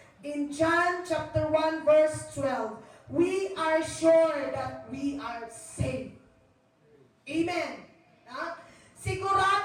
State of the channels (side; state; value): both; identical; correlation 1.00